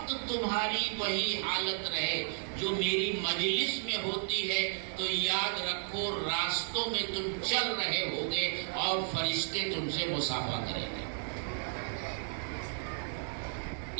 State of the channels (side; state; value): left; silent; digital silence